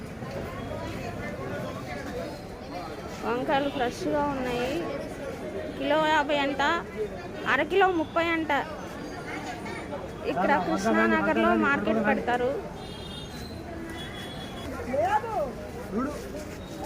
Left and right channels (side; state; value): both; identical; correlation 1.00